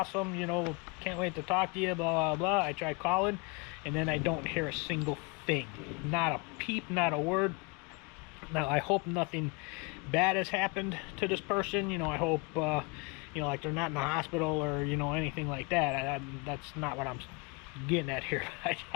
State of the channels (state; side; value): quieter; right; 29.7 dB